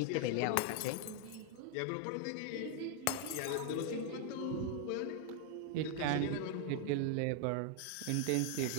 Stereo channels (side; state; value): both; different; correlation 0.00